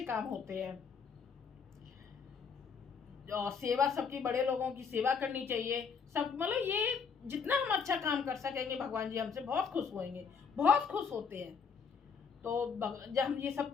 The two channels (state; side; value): quieter; right; 5.9 dB